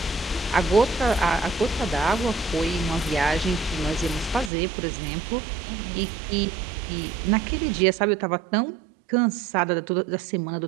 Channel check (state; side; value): drops out; left; at 4.5 s